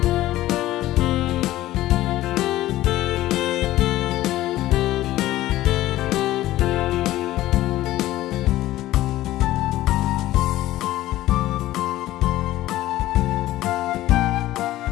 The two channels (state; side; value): quieter; right; 15.5 dB